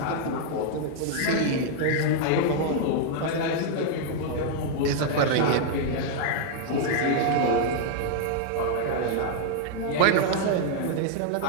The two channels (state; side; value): different; both; correlation 0.00